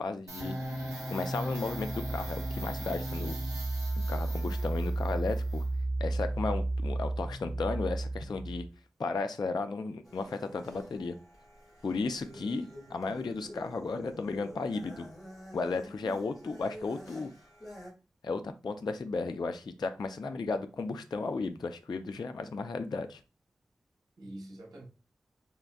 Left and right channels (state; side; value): normal; both; correlation 0.87